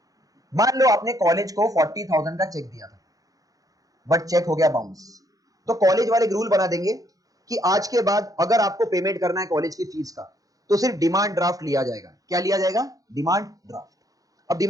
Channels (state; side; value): late; left; 0.17 ms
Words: मान लो आपने कॉलेज को 40,000 का चेक दिया था, बट चेक हो गया बाउंस, तो कॉलेज वाले रूल बना देंगे कि आज के बाद अगर आपको पेमेंट करना है कॉलेज की फीस का, तो सिर्फ डिमांड ड्राफ्ट लिया जाएगा। क्या लिया जाएगा? Demand draft. अब